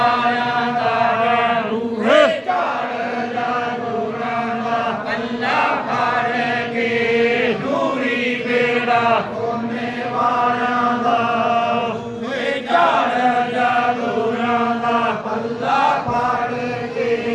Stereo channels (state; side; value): identical; both; correlation 1.00